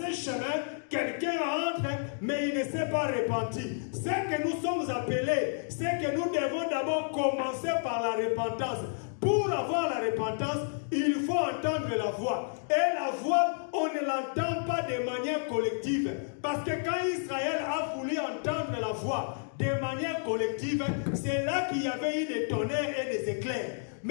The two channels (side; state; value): right; silent; digital silence